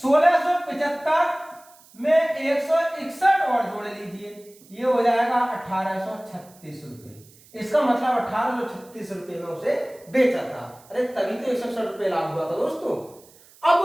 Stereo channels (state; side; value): noise; right; hiss, 26 dB below the sound